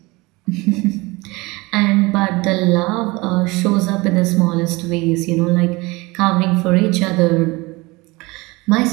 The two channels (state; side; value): quieter; left; 23.4 dB